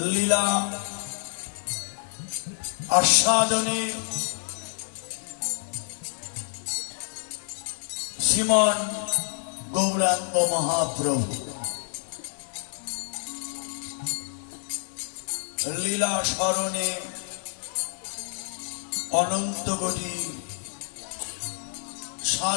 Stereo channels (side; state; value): right; silent; digital silence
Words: লীলা আস্বাদনে শ্রীমান গৌরাঙ্গ মহাপ্রভু লীলা স্মরণে অনন্ত কোটি